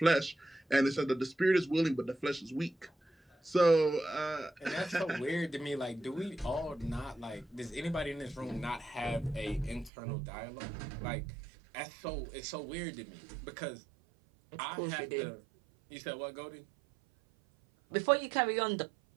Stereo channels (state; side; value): drops out; left; at 9.9 s